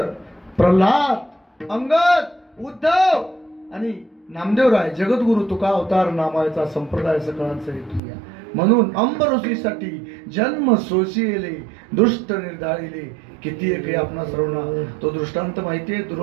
प्रल्हाद, अंगद, उद्धव आणि नामदेवराय जगद्गुरु तुका अवतार नामाचा संप्रदाय सकळांचा हेतू या. म्हणून अंबऋषीसाठी जन्म सोशिले दुष्ट निर्धारिले. किती एक आपणा सर्वांना तो दृष्टांत माहितीये.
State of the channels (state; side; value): drops out; left; at 8.0 s